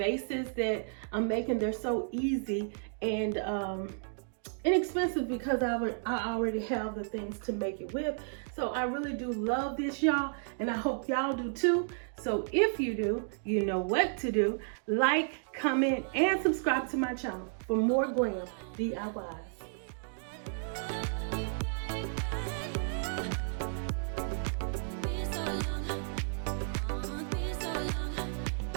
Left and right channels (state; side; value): silent; left; digital silence